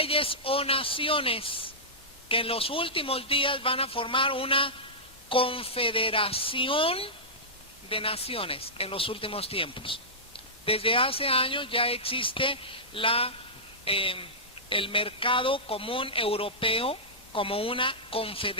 o naciones que en los últimos días van a formar una confederación de naciones en los últimos tiempos. Desde hace años ya existe el mercado común europeo como una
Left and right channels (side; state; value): both; normal; correlation -0.14